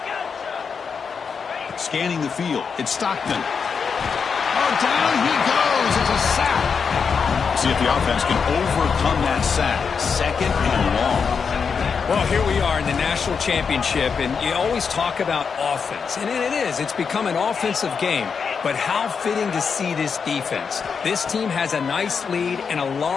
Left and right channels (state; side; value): quieter; right; 5.9 dB